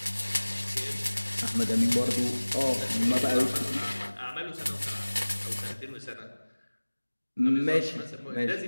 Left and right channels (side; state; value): both; inverted; correlation -1.00